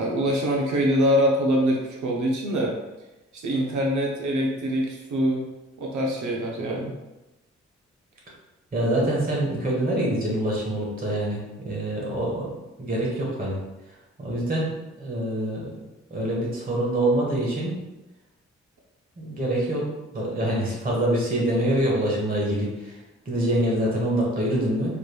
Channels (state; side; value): normal; both; correlation 0.48